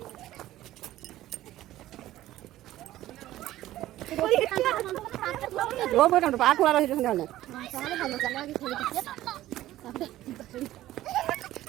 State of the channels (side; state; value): left; quieter; 14.7 dB